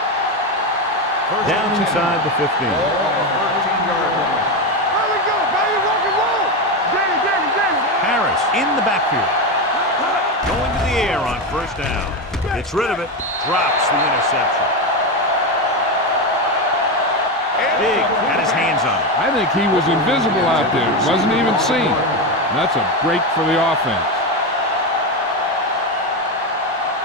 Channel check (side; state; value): both; normal; correlation 0.13